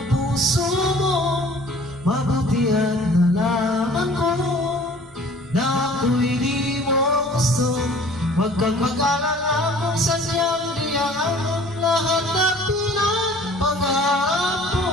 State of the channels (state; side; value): normal; both; correlation 0.50